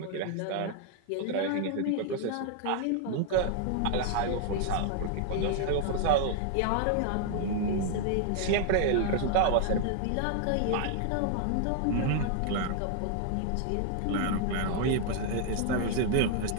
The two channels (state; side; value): different; both; correlation 0.00